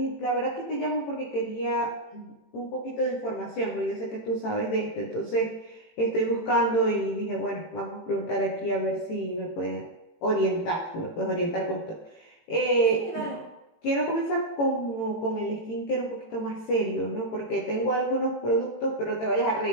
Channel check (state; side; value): late; right; 18 ms